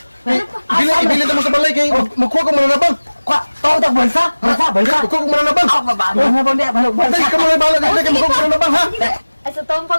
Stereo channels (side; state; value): both; inverted; correlation -1.00